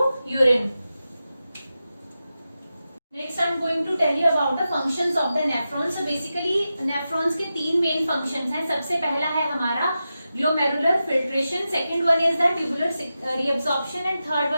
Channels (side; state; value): both; inverted; correlation -0.91